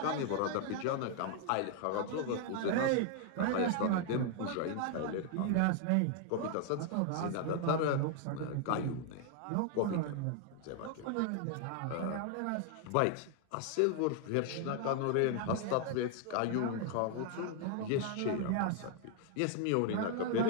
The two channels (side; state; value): both; different; correlation 0.00